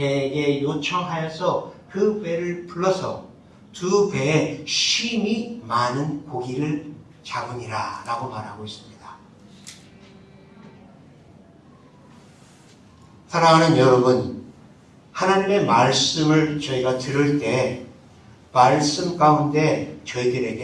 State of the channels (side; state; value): both; identical; correlation 1.00